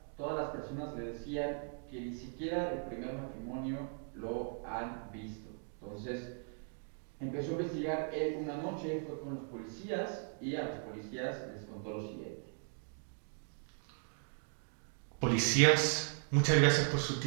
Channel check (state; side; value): silent; left; 53 dB below the other